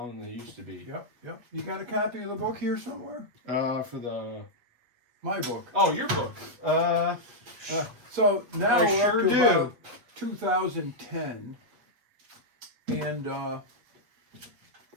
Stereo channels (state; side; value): late; left; 8.2 ms